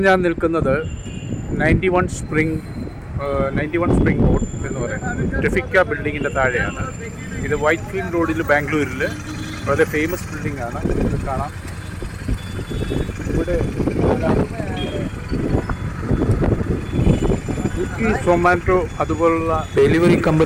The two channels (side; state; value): both; identical; correlation 1.00